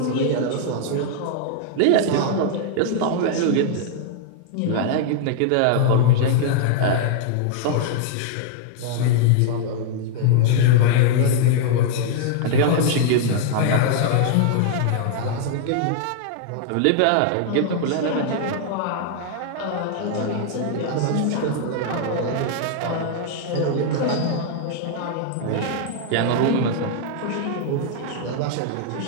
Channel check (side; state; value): both; different; correlation -0.01